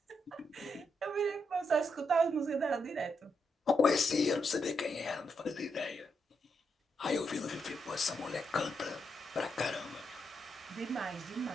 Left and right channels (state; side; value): normal; both; correlation 0.81